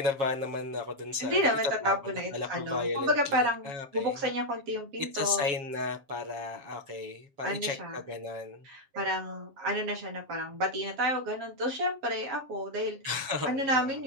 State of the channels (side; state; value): left; late; 7.4 ms